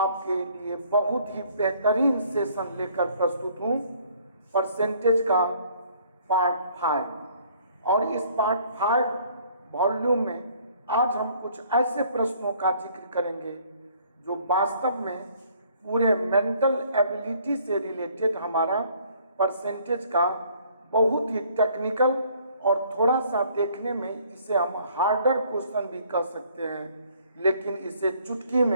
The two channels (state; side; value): inverted; both; correlation -0.60